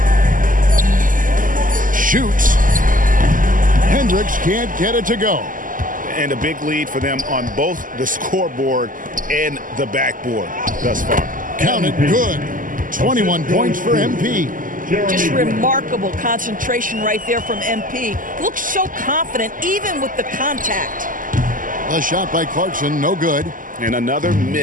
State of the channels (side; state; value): left; late; 0.39 ms